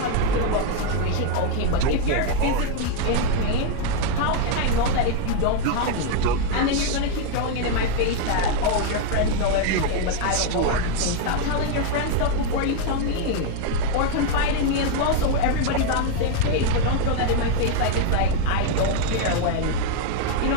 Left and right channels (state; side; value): different; both; correlation 0.00